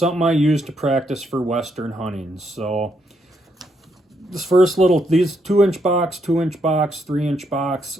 I use to practice for Western hunting. So, this first little, these 2-inch box, 2-inch box, 3-inch box,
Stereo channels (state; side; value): normal; both; correlation 0.76